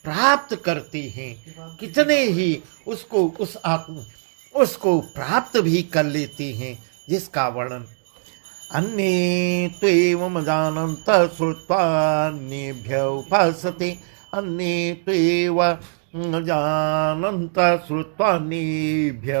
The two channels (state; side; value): silent; left; digital silence